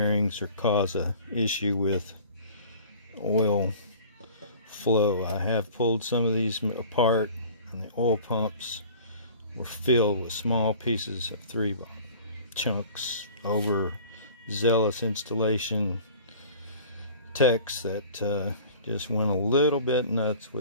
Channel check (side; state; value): both; inverted; correlation -0.45